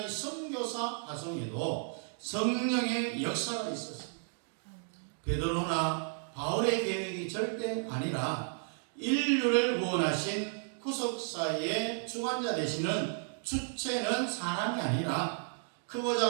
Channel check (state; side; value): silent; left; 56 dB below the other